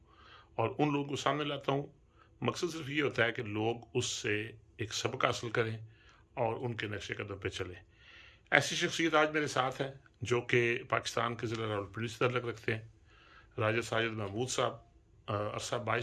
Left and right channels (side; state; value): both; identical; correlation 1.00